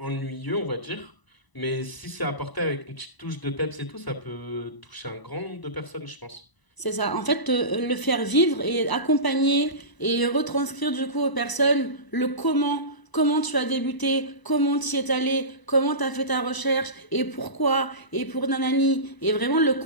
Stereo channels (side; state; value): right; late; 1.0 ms